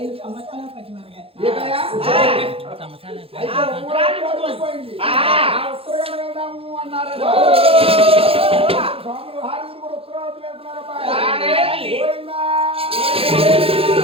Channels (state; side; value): late; left; 0.27 ms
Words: సంవత్సరాలు పచ్చి మరగా ఏటయ్యా? ఉండిపోయింది ఉత్తరకాండ వెళ్దాము అన్నారు స్వాములు హారీలు కూడా ఉత్తరావతి వెళ్తున్నారప్ప పోయిందా